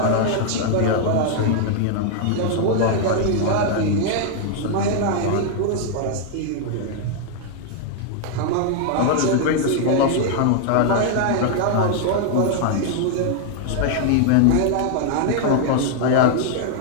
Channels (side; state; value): both; different; correlation 0.00